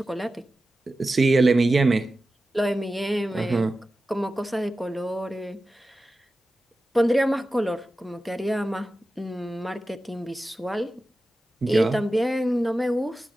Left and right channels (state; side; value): normal; both; correlation 0.94